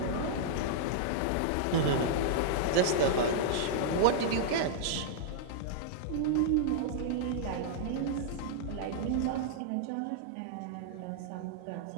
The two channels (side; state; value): both; different; correlation -0.02